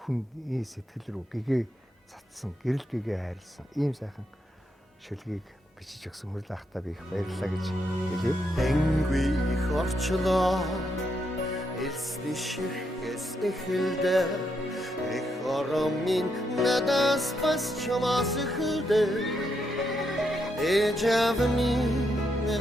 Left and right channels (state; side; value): normal; both; correlation 0.79